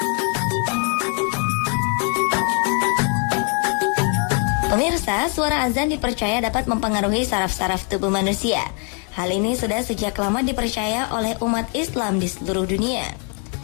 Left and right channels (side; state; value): right; quieter; 39.5 dB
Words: Pemirsa, suara azan dipercaya dapat mempengaruhi saraf-saraf tubuh manusia. Hal ini sudah sejak lama dipercaya oleh umat Islam di seluruh dunia.